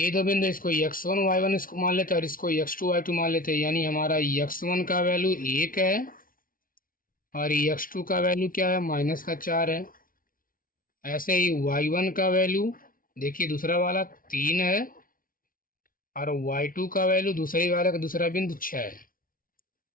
दो बिंदु, इसको x1 y1 इसको मान लेते हैं और इसको x2 y2 मान लेते हैं। यानी हमारा x1 का वैल्यू 1 है और x2 का वैल्यू क्या है, -4 है। ऐसे ही y1 का वैल्यू देखिए दूसरा वाला 3 है और y2 का वैल्यू दूसरे वाले का दूसरा बिंदु 6 है।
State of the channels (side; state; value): right; late; 0.41 ms